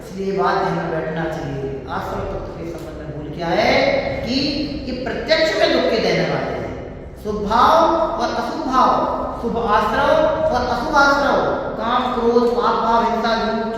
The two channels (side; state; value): both; identical; correlation 1.00